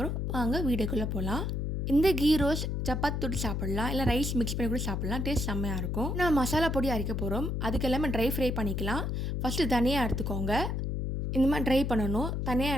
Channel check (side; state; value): left; noise; hum, 1 dB below the sound